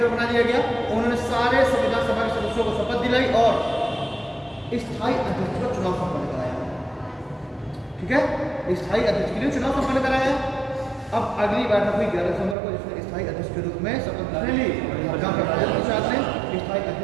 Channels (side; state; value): left; drops out; at 12.6 s